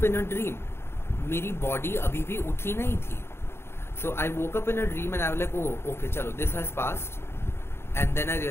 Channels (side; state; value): right; late; 0.12 ms